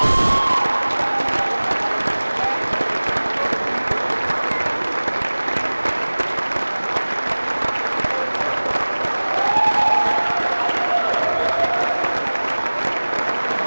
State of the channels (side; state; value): both; inverted; correlation -1.00